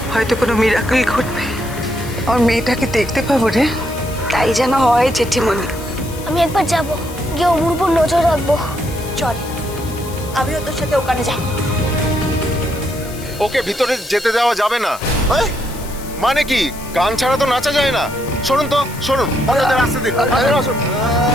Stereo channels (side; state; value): left; noise; hiss, 16 dB below the sound